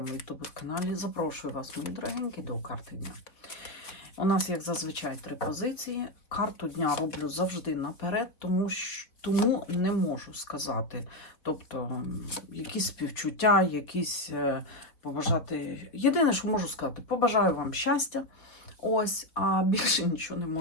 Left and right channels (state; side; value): late; right; 3.9 ms